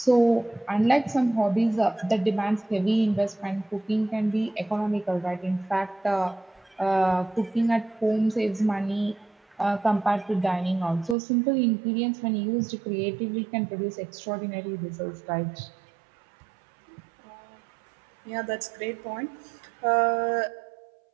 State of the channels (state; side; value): drops out; left; at 11.2 s